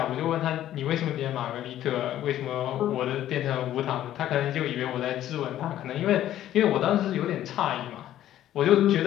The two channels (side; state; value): right; quieter; 12.5 dB